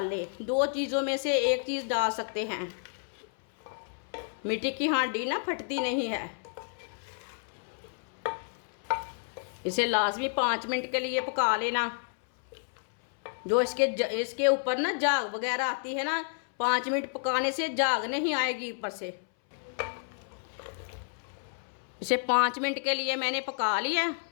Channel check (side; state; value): right; silent; 58 dB below the other